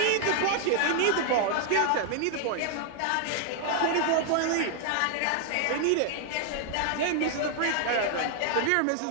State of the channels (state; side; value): different; both; correlation 0.00